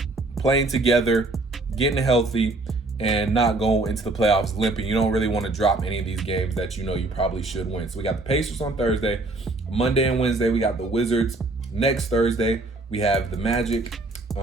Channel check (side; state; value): left; quieter; 3.0 dB